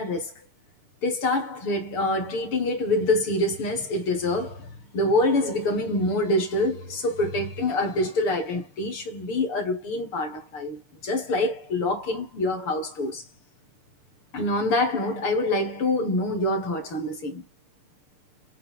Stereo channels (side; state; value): right; late; 6.8 ms